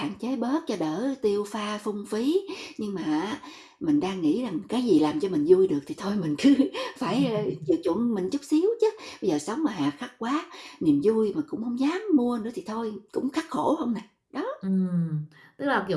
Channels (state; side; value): identical; both; correlation 1.00